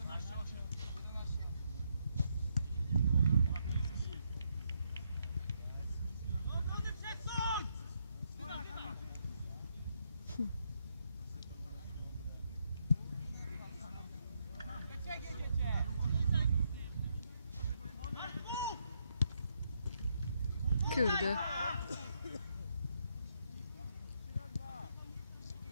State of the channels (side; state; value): both; inverted; correlation -0.77